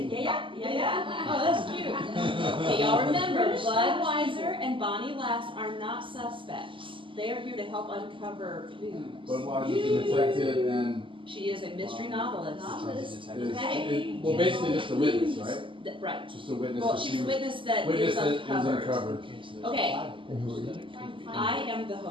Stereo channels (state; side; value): late; left; 0.25 ms